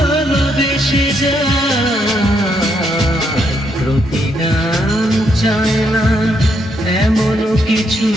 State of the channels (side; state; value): both; normal; correlation 0.76